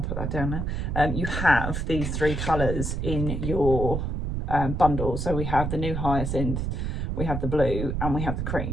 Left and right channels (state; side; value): noise; right; rumble, 2 dB below the sound